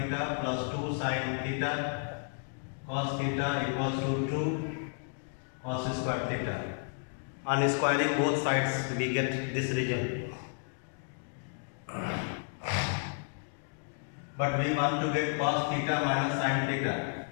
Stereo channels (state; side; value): silent; right; 56 dB below the other